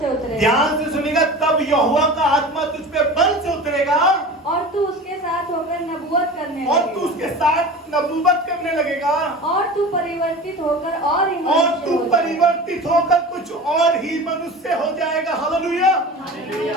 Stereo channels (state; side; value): normal; both; correlation 0.34